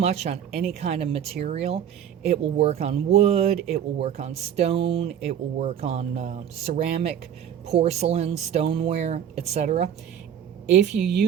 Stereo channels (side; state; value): left; quieter; 9.3 dB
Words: on any kind of material. It will work on wood, it will work on stone, it will work on ceramic, porcelain, stoneware, etc. If you